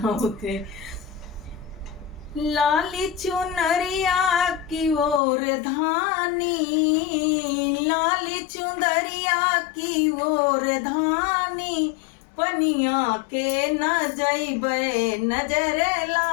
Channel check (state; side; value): drops out; right; at 5.2 s